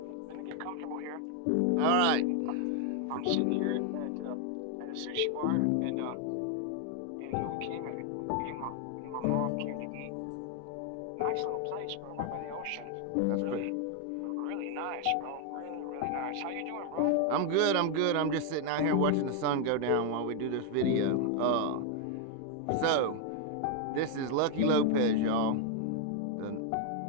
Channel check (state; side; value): different; both; correlation 0.01